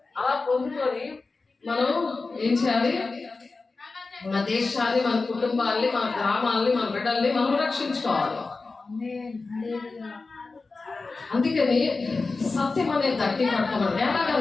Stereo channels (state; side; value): quieter; right; 3.9 dB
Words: అలా పొందుకొని మనం ఏం చేయాలి? మన దేశాన్ని, మన కుటుంబాన్ని, మన గ్రామాలని, మన బిడ్డల్ని మనం రక్షించుకోవాలి. అందుకని సత్యం అనే దట్టి కట్టుకోవాలి.